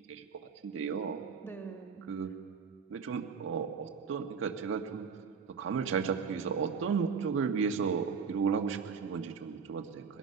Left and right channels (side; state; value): left; quieter; 5.9 dB